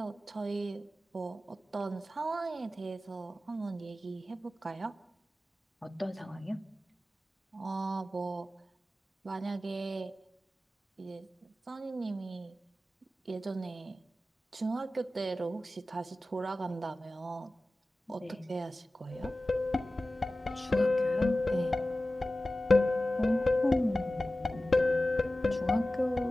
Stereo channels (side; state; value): both; normal; correlation 0.95